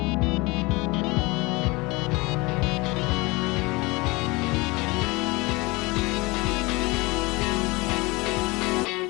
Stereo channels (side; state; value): right; quieter; 24.4 dB